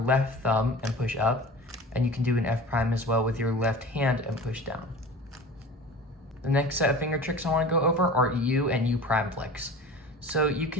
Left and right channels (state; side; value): normal; both; correlation 0.38